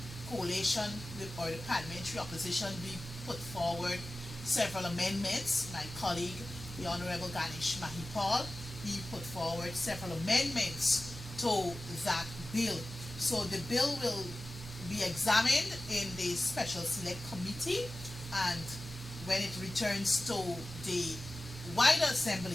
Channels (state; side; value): normal; both; correlation 0.96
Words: coalition or the parliamentary opposition, we put forward several amendments. My colleague, the Honorable Ganesh Mahipal, he put forward several amendments to that bill. So the bill will be examined in the special select committee, and when it returns to the wider